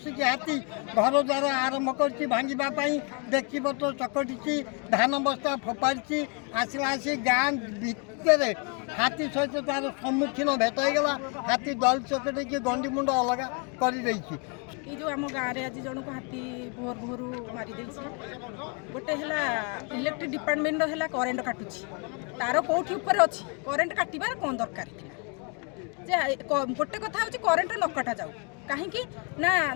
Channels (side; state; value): right; quieter; 35.4 dB